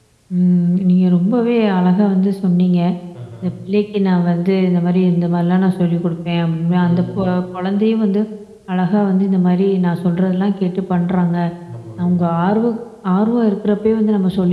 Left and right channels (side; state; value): both; identical; correlation 1.00